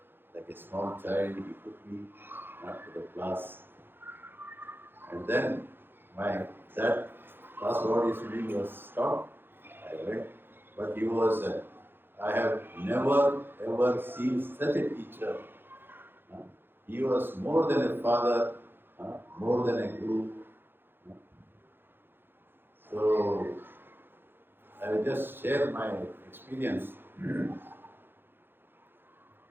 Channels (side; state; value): left; late; 0.10 ms